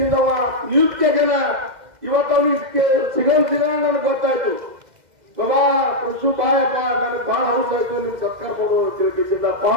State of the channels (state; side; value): late; left; 2.1 ms